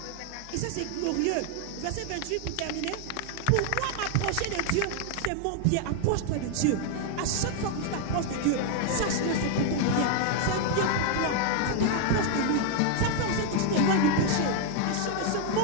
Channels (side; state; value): both; different; correlation 0.00